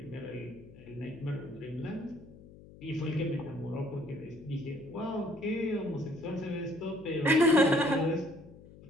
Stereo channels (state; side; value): noise; left; hum, 20 dB below the sound